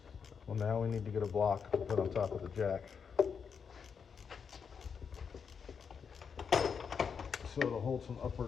Well, now we need to get a block to put on top of the jack, so it'll hold some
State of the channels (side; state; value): right; quieter; 6.4 dB